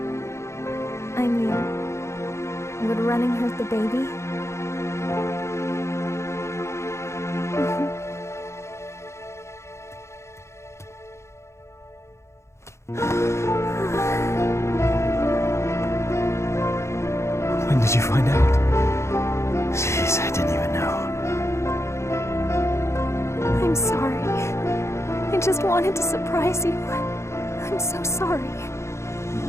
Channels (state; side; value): late; right; 0.13 ms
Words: I mean, would running hurt the baby? When did you find out? Jeez, I didn't even know. I'm sorry. I just wanted to surprise you. I'm so sorry.